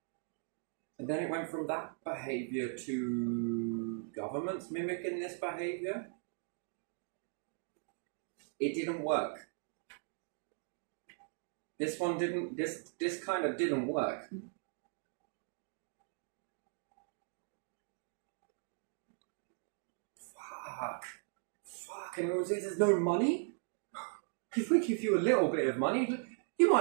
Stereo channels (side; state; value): left; silent; 52 dB below the other